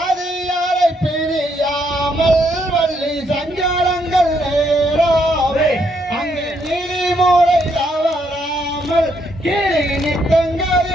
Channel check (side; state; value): both; normal; correlation 0.74